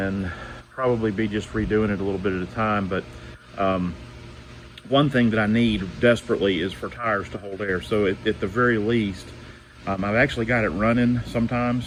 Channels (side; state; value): both; identical; correlation 1.00